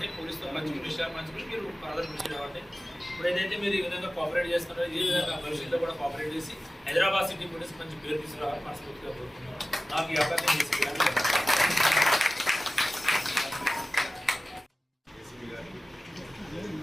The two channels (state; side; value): normal; both; correlation 0.96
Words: పోలీస్తో పంచుకునే విషయాలు పంచుకుని మీరు ఫర్దర్ కృషి అవ్వండి. ఇప్పుడు ఏదైతే మీరు ఈ విధంగా కోఆపరేట్ చేస్తున్నారో ఈ విధంగా భవిష్యత్తులో కూడా కోఆపరేట్ చేసి హైదరాబాద్ సిటీ పోలీస్ మంచి పేరు తీసుకురావాలని మనస్ఫూర్తిగా కోరుతున్నాను. నాకు ఈ అవకాశం